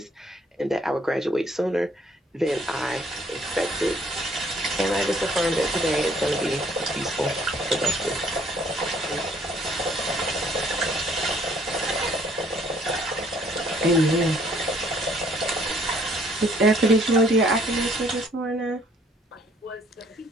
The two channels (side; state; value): both; normal; correlation 0.62